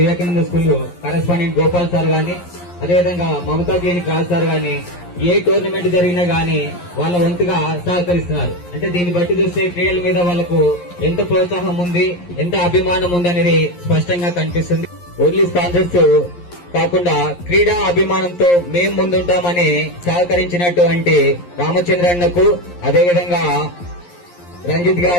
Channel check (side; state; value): right; late; 11 ms